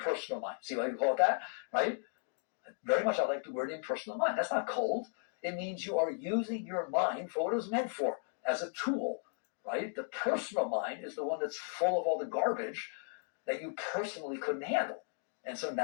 mind. See why you call it that, right? Very much I like the word impersonal mind. That's not cold. It means you are using your mind for what it was meant for, as a tool, right? The personal mind is the one that's full of all the garbage that you personally couldn't handle. And so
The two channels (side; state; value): right; silent; 54 dB below the other